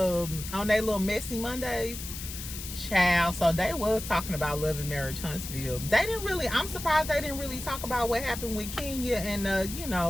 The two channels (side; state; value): left; noise; hiss, 9 dB below the sound